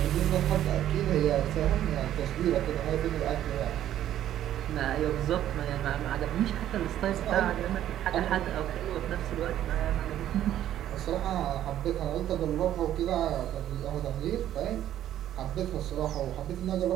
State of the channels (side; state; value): left; quieter; 11.8 dB